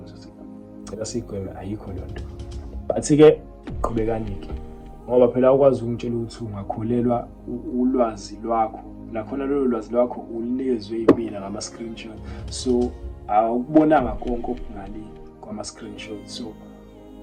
cela sigweme ayikho lonto bathi ke qhubekani-ke ngoba phela ukwazi ukungitshela ukuthi ungakholelwa ulwazi lwakho nakhona lolo lwazi lwakho ulinikezwe yimina ngama-screenshot so awukubonanga konke okungale kwama-screenshot so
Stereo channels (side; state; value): both; identical; correlation 1.00